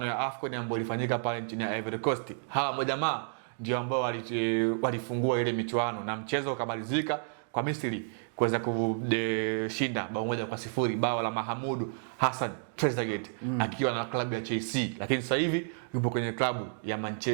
ya AFCON ambayo ilifanyika pale nchini Ivory Coast. Hawa majamaa ndio ambao walifungua ile michuano na mchezo ukamalizika kwa Misri kuweza kushinda bao 1-0, bao la Mahamudu Hassan Trezeguet akiwa na klabu ya Chelsea, lakini sasa hivi yupo kwenye klabu ya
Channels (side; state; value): left; silent; digital silence